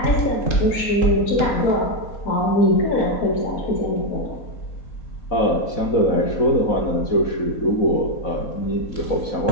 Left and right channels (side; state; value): right; late; 4.0 ms